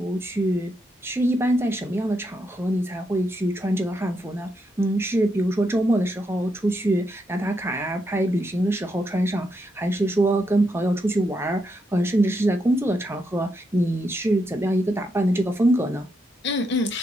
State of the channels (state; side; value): normal; both; correlation 0.81